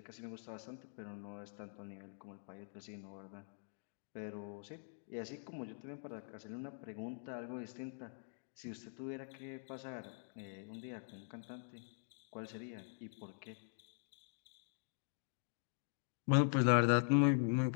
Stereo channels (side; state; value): right; silent; digital silence